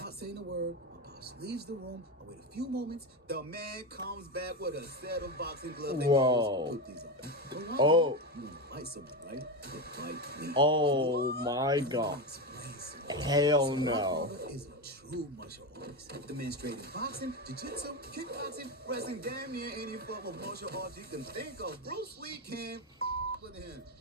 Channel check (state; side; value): normal; both; correlation 0.15